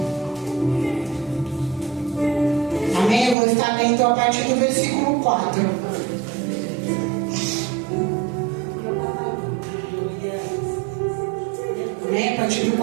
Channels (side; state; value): left; drops out; at 3.4 s